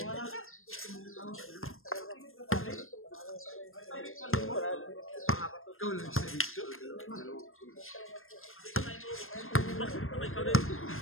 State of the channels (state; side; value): late; right; 0.60 ms